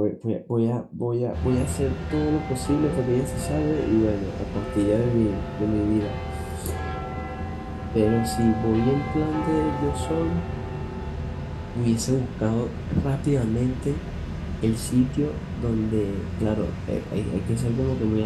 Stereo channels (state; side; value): identical; both; correlation 1.00